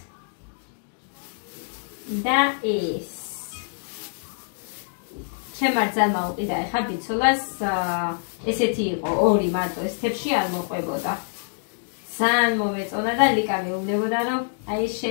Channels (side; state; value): right; silent; digital silence